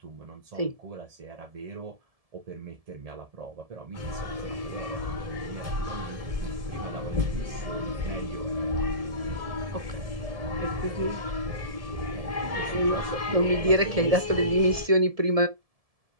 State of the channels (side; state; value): left; late; 1.7 ms